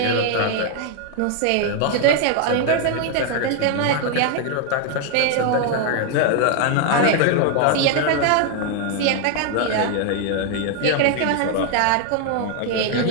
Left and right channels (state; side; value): different; both; correlation 0.00